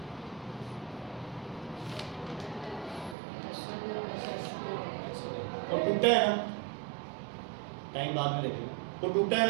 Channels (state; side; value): drops out; left; at 3.2 s